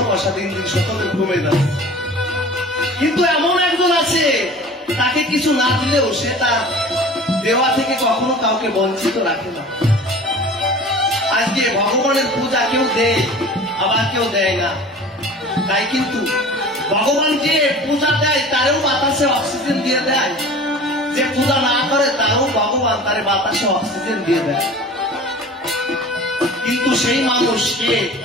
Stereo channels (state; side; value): normal; both; correlation 0.41